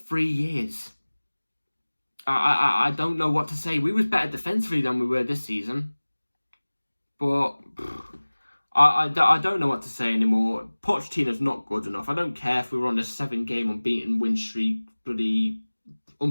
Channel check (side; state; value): both; inverted; correlation -1.00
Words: 3 years. I don't know what to say. We was better defensively than we were this season. But I don't know what to say anymore. Pochettino's not good enough. I don't care if we were on a 7-game unbeaten win streak, bloody